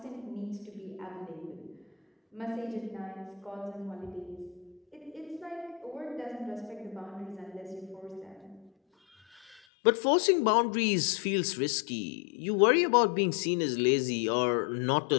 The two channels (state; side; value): drops out; right; at 9.6 s